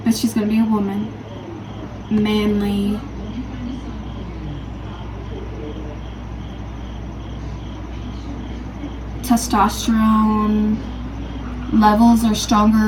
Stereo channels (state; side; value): identical; both; correlation 1.00